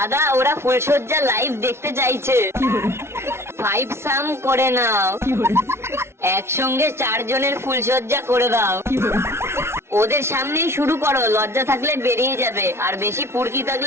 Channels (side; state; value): left; late; 0.12 ms